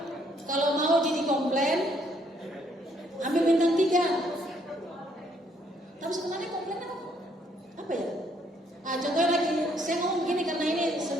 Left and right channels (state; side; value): normal; both; correlation 0.69